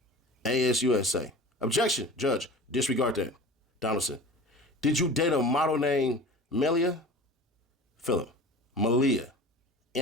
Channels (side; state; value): both; normal; correlation 0.38